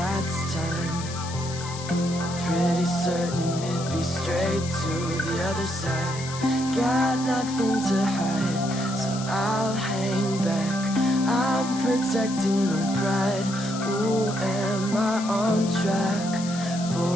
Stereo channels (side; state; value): left; noise; hiss, 11 dB below the sound